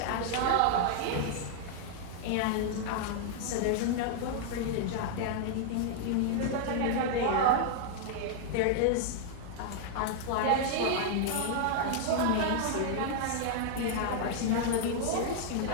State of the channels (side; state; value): both; different; correlation -0.01